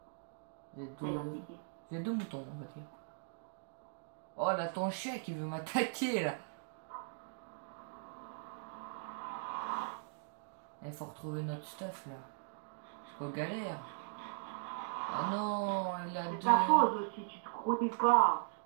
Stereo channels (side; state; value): left; silent; digital silence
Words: J'ai deux moutons on va dire. Oh là ton chien qui veut m'attaquer là. Il faut retrouver notre stuff là. Parce qu'on galère. Ah non, il a C'est deux. ta faute aussi, tu te connais pas.